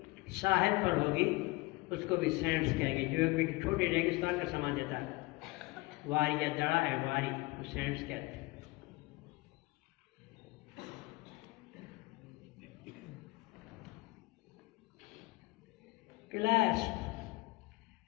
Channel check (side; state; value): right; quieter; 22.7 dB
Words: साहिल पर होगी, उसको भी सैंड्स कहेंगे, जो एक छोटे रेगिस्तान का समान देता है। वारी या दड़ा है, वारी तो सैंड्स कहते हैं। Clasp,